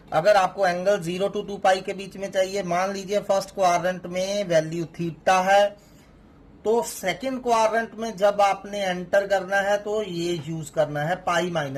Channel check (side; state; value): both; identical; correlation 1.00